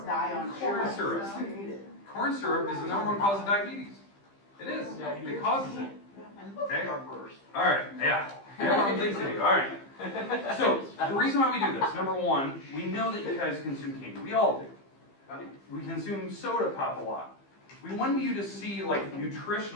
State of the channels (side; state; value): right; late; 15 ms